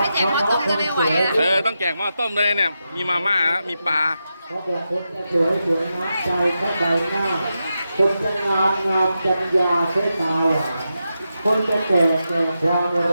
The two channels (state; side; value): inverted; both; correlation -0.88